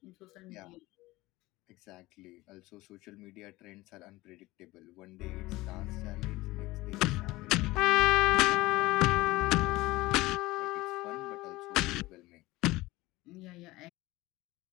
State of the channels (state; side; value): quieter; right; 19.5 dB